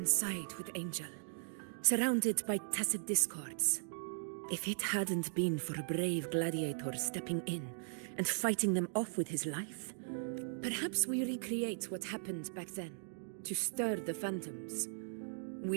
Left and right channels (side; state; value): left; silent; digital silence